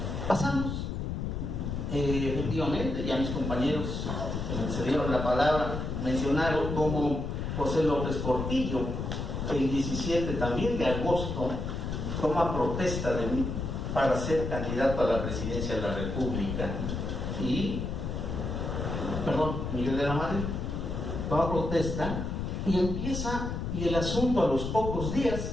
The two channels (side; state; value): left; noise; rumble, 3 dB below the sound